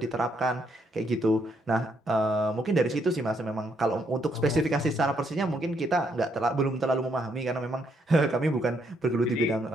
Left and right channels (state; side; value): normal; both; correlation 0.74